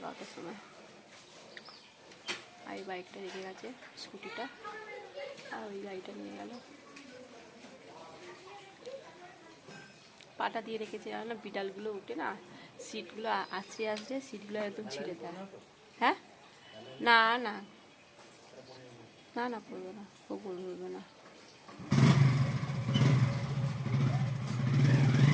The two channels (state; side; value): identical; both; correlation 1.00